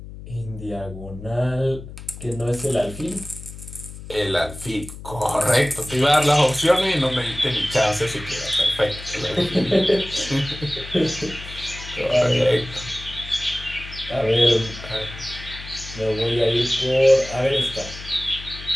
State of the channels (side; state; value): left; noise; hum, 13 dB below the sound